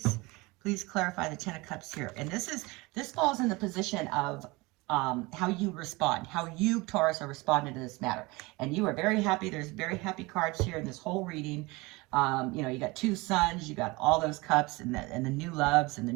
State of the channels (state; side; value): quieter; left; 23.7 dB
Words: Please clarify the 10 of Cups here. And this falls in the position of how you respond, how you, Taurus, are responding to this matter. And you are very happy. There's very happy cards here in this whole reading. You know, you got two suns, you got all those cups and the new loves and the